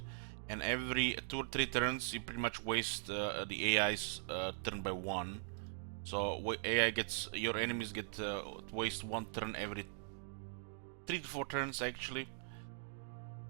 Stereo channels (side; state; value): left; silent; digital silence